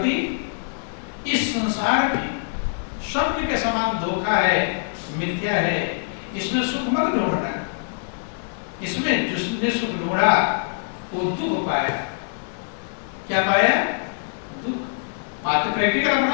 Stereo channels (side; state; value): right; silent; 63 dB below the other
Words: इस संसार में स्वप्न के समान धोखा है, मिथ्या है, इसमें सुख मत ढूंढना। इसमें जिसने सुख ढूंढा वो दुख पाया। क्या पाया? दुख। बात प्रैक्टिकल